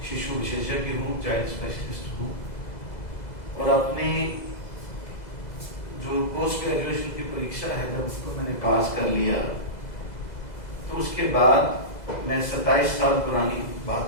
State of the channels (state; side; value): late; right; 2.0 ms